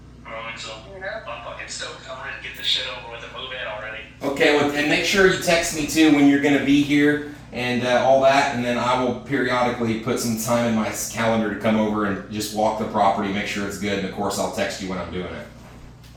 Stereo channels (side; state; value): both; identical; correlation 1.00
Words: don't think so. I'm fucking stoked. I'm ready to get this shit over with and move in already. Okay, well, and make sure you text me too when you're going to be here and all that, and then I will periodically put some time in my calendar to come over and just walk the property, make sure it's good, and of course I'll text you when I'm doing it.